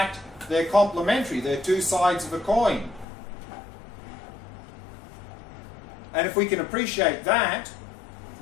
they're complementary. They're two sides of a coin. And if we can appreciate that,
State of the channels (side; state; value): right; drops out; at 3.1 s